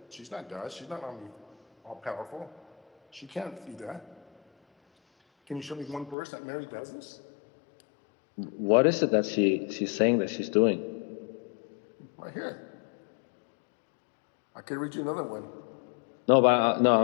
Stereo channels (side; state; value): right; drops out; at 6.2 s